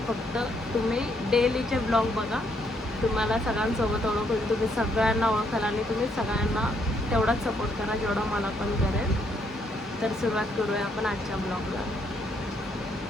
फक्त तुम्ही डेलीचे ब्लॉग बघा, तुम्हाला सगळ्यांसोबत ओळख होईल, तुम्ही सगळ्यांना ओळखाल आणि तुम्ही सगळ्यांना तेवढाच सपोर्ट करा जेवढा मला पण करेल. तर सुरुवात करूया आपण आजच्या ब्लॉगला.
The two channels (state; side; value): normal; both; correlation 0.72